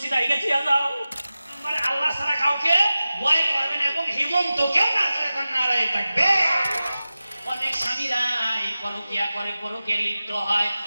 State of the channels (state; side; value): inverted; both; correlation -0.95